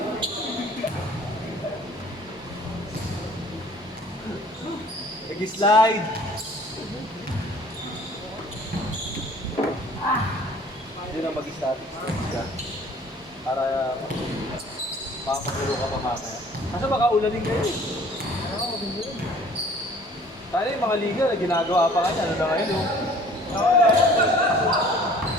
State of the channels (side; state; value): both; normal; correlation 0.52